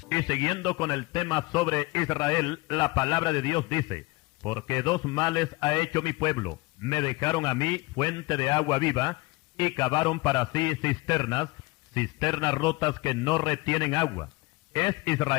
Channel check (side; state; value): right; quieter; 23.1 dB